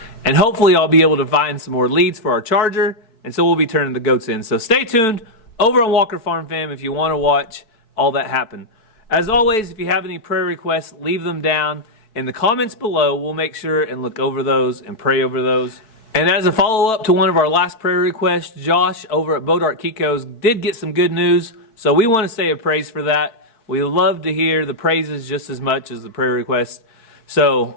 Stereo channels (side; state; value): right; late; 4.6 ms